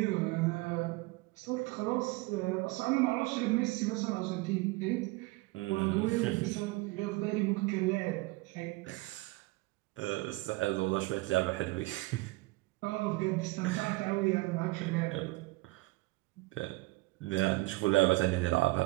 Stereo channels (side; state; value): left; quieter; 22.3 dB